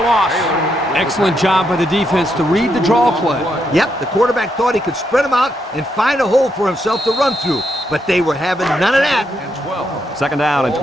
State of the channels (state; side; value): normal; both; correlation 0.79